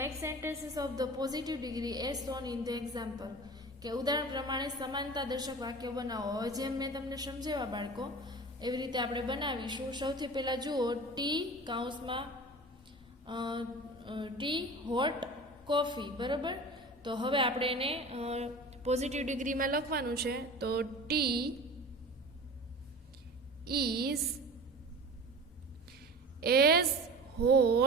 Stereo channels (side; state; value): both; normal; correlation 0.37